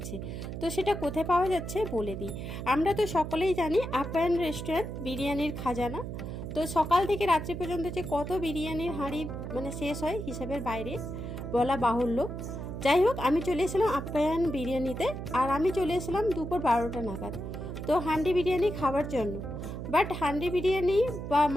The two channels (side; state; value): right; noise; hum, 7 dB below the sound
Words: তো সেটা কোথায় পাওয়া যাচ্ছে বলে দিই। আমরা তো সকলেই জানি আপ্যায়ন রেস্টুরেন্ট বিরিয়ানির খাজানা। তো সকাল থেকে রাত্রি পর্যন্ত যে কত বিরিয়ানির হাঁড়ি মানে শেষ হয় হিসাবের বাইরে বলা বাহুল্য। যাই হোক, আমি চলে এসেছিলাম আপ্যায়ন বিরিয়ানিতে, আর আমি চলে এসেছিলাম দুপুর 12টা নাগাদ তো হান্ডি বিরিয়ানি খাওয়ার জন্য। বাট হান্ডি বিরিয়ানি বা